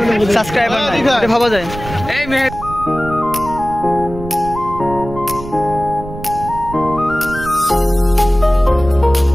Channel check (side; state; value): right; noise; rumble, 12 dB below the sound